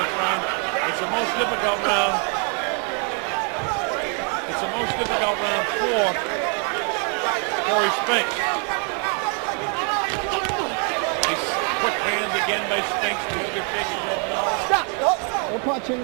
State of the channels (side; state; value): left; quieter; 39.7 dB